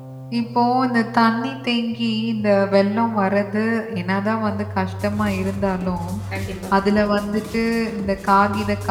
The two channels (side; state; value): both; identical; correlation 1.00